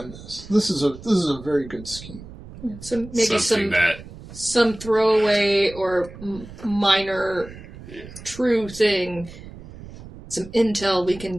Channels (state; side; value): noise; right; rumble, 16 dB below the sound